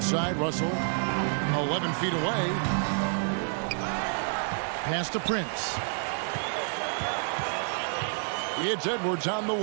Russell, 11 feet away. Pass to Prince. It's Edwards on the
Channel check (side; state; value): left; silent; 59 dB below the other